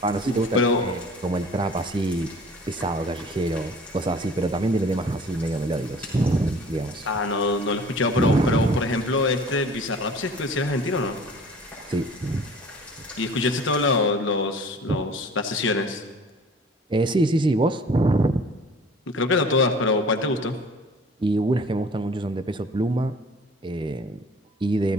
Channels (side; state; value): both; normal; correlation 0.48